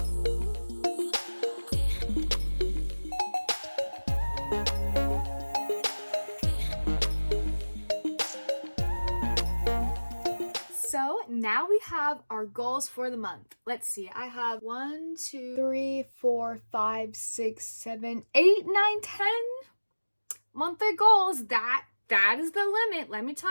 So now we have our goals for the month. Let's see. I have 1, 2, 3, 4, 5, 6, 7, 8, 9, 10 monthly goals. That is the limit. Let me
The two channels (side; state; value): both; inverted; correlation -1.00